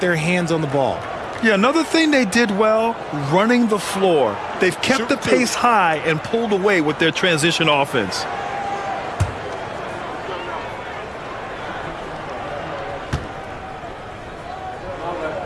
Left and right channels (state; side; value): identical; both; correlation 1.00